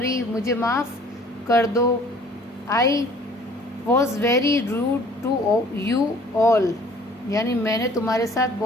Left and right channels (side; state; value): both; normal; correlation 0.53